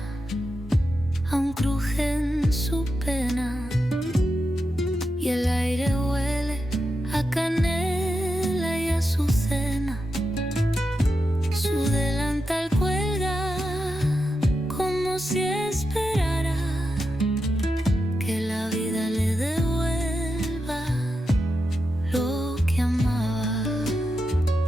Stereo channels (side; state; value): both; normal; correlation 0.88